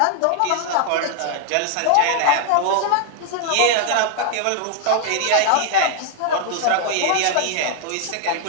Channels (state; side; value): different; both; correlation 0.00